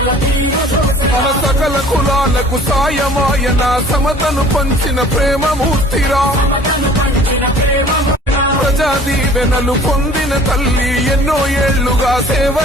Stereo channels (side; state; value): both; normal; correlation 0.50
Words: మన సకల కులాలకు సాయమాయన సమతను పంచిన ప్రేమమూర్తిరా. ప్రజా దీవెనలు పొందిన తల్లి ఎన్నో ఏళ్లుగా సేవ